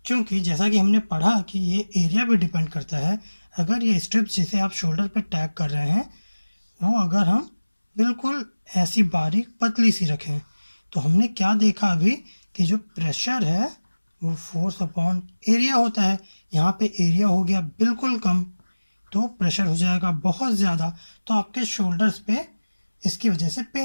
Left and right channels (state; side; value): inverted; both; correlation -1.00